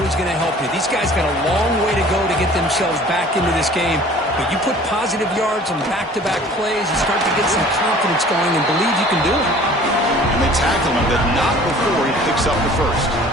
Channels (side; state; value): both; normal; correlation 0.49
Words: going to help you. These guys got a long way to go to get themselves back into this game. But you put positive yards on back-to-back plays, you start to get some confidence going and believe you can do it. And they tackle him, but not before he picks up the first.